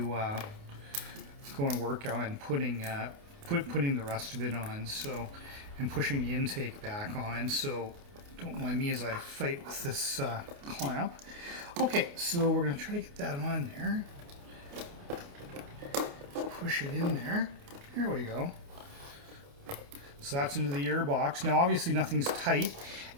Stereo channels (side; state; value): left; late; 29 ms